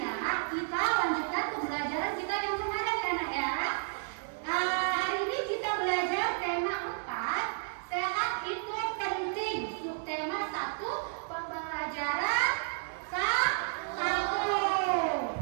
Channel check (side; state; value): left; silent; digital silence